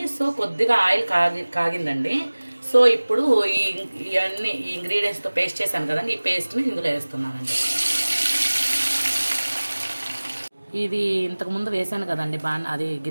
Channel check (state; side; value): inverted; both; correlation -1.00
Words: సో కొద్దిగా ఆయిల్ కాగిందండి. సో ఇప్పుడు ఇవన్నీ ఈ ఇంగ్రీడియంట్స్తో పేస్ట్ చేశాను కదండి, ఈ పేస్ట్ని ఇందులో వేస్తున్నానండి. ఇది ఇంతకుముందు వేసాను కదండి, అది